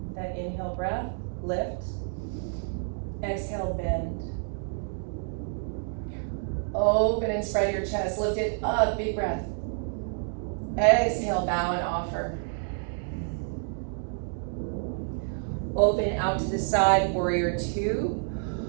That inhale breath, lift. Exhale, bend. Open and spread your chest, lift it up, big breath. Exhale, bow and offer. Open out to the side, warrior two.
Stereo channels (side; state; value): left; silent; digital silence